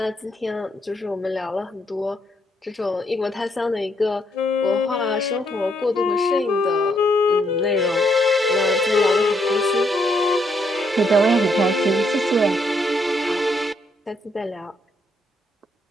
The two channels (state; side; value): normal; both; correlation 0.74